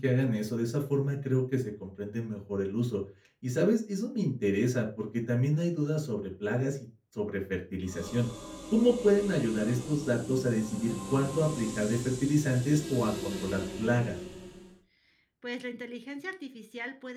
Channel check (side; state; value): both; identical; correlation 1.00